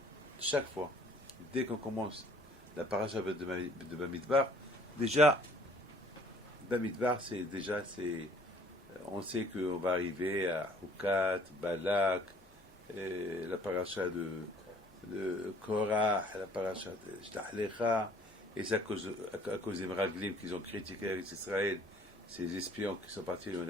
Chaque fois, dès qu'on commence la paracha de Bamidbar, déjà, Bamidbar, on sait qu'on va arriver à Hukat, Balak, la paracha de Korah, la paracha de Shlach Lecha, et c'est à cause des Meraglim qu'ils ont critiqué avec Israël, ces espions qui sont partis, on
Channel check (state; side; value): normal; both; correlation 0.56